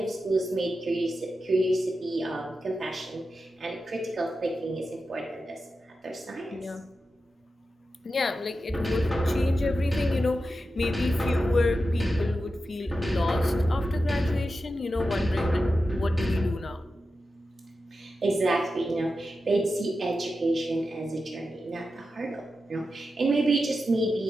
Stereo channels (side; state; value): both; normal; correlation 0.90